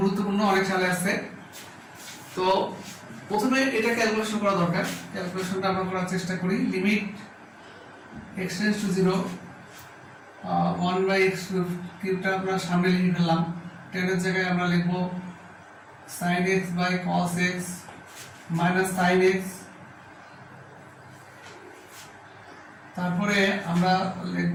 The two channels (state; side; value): identical; both; correlation 1.00